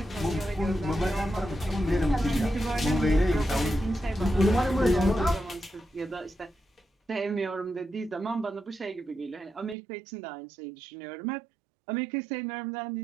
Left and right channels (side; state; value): left; drops out; at 9.8 s